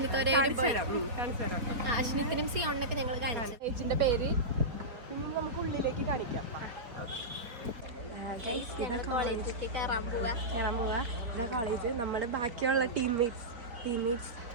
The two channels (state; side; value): late; left; 4.4 ms